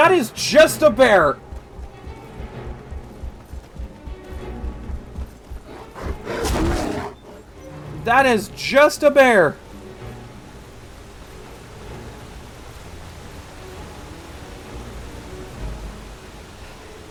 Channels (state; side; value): identical; both; correlation 1.00